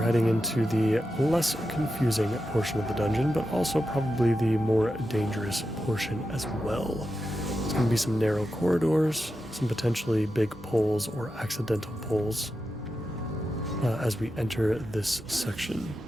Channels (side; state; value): both; normal; correlation 0.89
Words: heading into the less confusing portion of the dungeon, but also probably the more dangerous portion as well. There's going to be some narrow corridors, some potentially big pulls or accidental pulls as we enter this section.